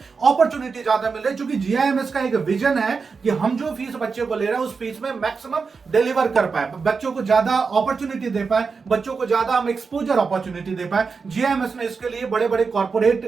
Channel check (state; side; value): quieter; left; 5.0 dB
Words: ज्यादा मिल रही है, क्योंकि GIMS का एक विजन है कि हम जो फीस बच्चे को ले रहे हैं उस फीस में मैक्सिमम डिलीवर कर पाए, बच्चों को ज्यादा अपॉर्चुनिटी दे पाए, बच्चों को ज्यादा हम एक्सपोजर अपॉर्चुनिटी दे पाए। GIMS ने इसके लिए बड़े बड़े कॉर्पोरेट